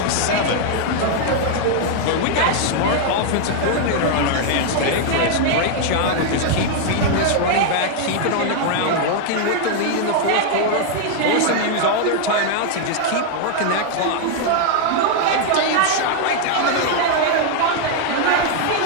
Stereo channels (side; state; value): both; different; correlation 0.00